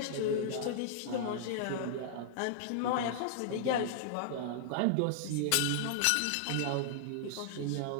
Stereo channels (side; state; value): both; different; correlation -0.01